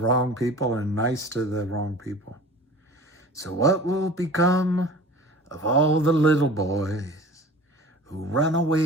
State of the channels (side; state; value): both; normal; correlation 0.42